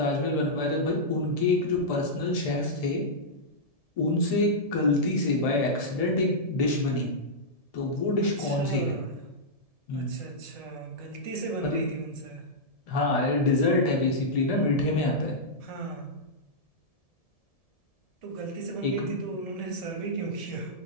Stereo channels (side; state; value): right; late; 1.7 ms